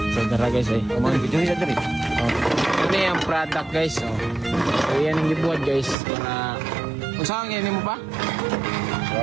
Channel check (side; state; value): left; drops out; at 6.0 s